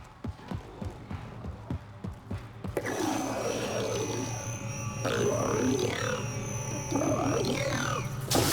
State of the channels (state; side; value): identical; both; correlation 1.00